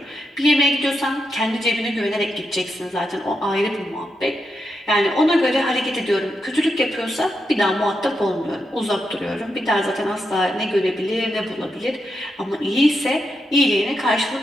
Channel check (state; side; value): normal; both; correlation 0.84